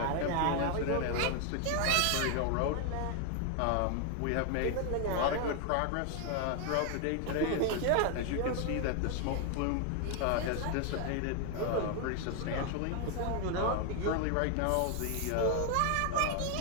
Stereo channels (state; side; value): different; both; correlation 0.00